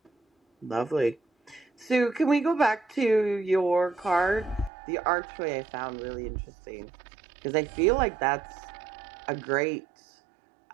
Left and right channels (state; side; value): drops out; left; at 4.7 s